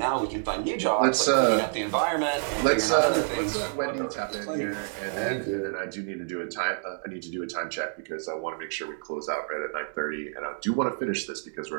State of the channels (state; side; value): silent; left; digital silence